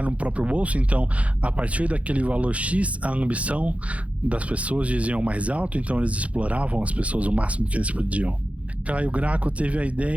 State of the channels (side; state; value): left; late; 0.065 ms